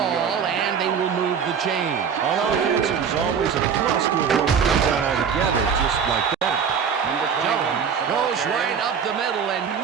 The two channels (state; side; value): quieter; left; 7.0 dB